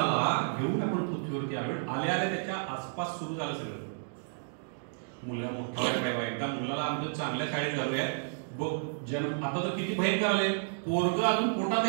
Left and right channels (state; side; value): silent; left; digital silence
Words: घेऊन आपण पृथ्वीवरती आलो. आल्या आल्या त्याच्या आसपास सुरू झालं सगळं. मुलगा मोठा व्हायला, एकदा मुलाला आमच्या चांगल्या शाळेत घालूया. जन्म आता तर किती भयंकर आले, पोरग अजून पोटात